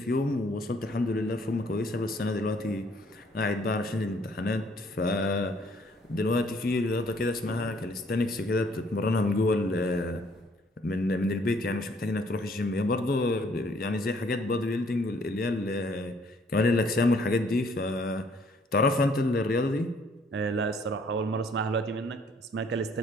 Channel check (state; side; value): normal; both; correlation 0.63